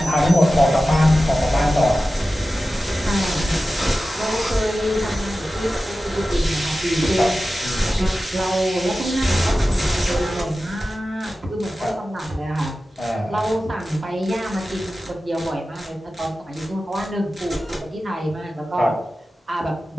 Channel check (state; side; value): normal; both; correlation 0.94